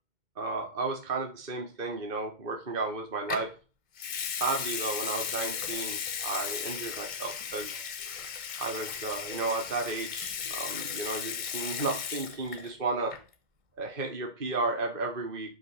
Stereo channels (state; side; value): late; left; 2.1 ms